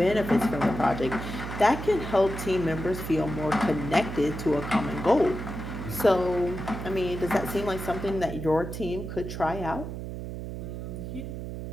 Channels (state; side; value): noise; right; hum, 7 dB below the sound